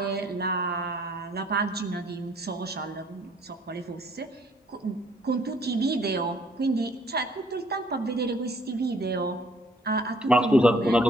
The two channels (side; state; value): both; normal; correlation 0.61